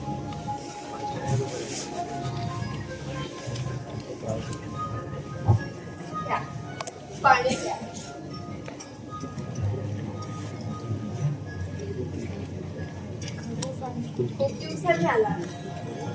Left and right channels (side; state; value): both; identical; correlation 1.00